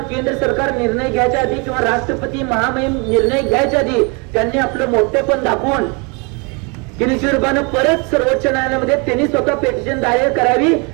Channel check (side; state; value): left; quieter; 31.7 dB